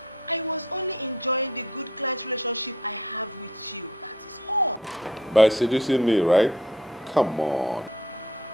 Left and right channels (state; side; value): normal; both; correlation 0.56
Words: I was only enjoying the good client relationship I have with you. That is all. By seducing me, right? Come on.